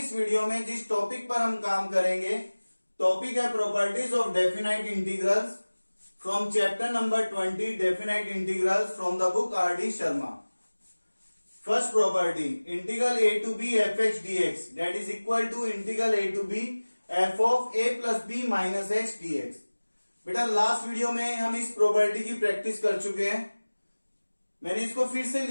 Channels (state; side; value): inverted; both; correlation -1.00